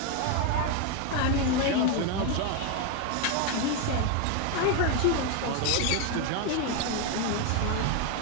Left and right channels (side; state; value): both; different; correlation 0.01